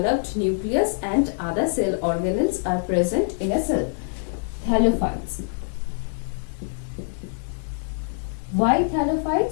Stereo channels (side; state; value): right; silent; digital silence